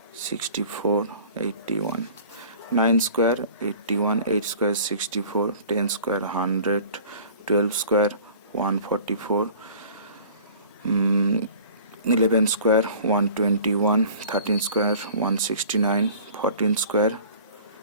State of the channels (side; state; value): both; inverted; correlation -0.47